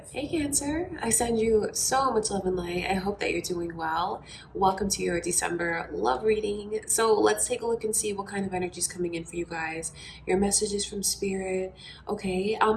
Hey Cancer, I send you so much love and light. I hope that you're doing well. Welcome to your December love reading. So let's take a look and see what kind of energy is coming in for you guys. Your messages from Spirit. Okay,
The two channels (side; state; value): both; identical; correlation 1.00